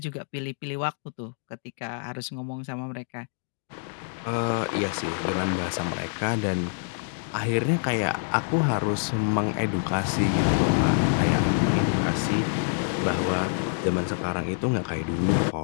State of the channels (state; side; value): silent; right; digital silence